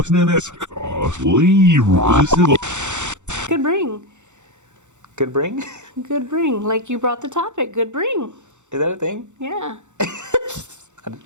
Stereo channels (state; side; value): late; left; 0.84 ms